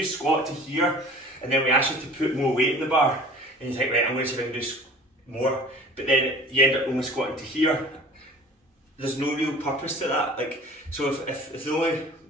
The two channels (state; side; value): normal; both; correlation 0.44